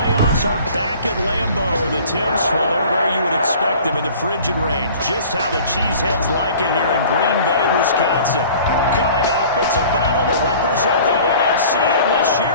are back at Lambeau. The temps, well, they're where you would expect them in the frigid range. Just how the Cheeseheads like it here in Green Bay, Wisconsin. Coming up, it's a battle to represent the NFC in this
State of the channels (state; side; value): inverted; both; correlation -0.47